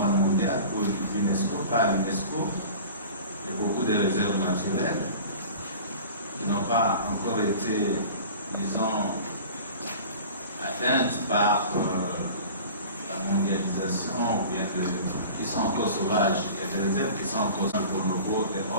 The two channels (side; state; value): both; inverted; correlation -0.40